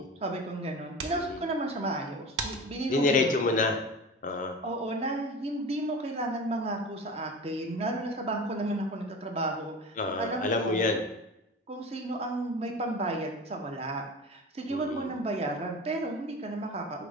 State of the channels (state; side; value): normal; both; correlation 0.33